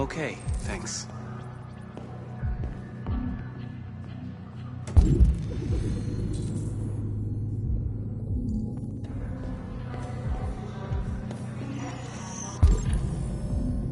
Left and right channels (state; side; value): identical; both; correlation 1.00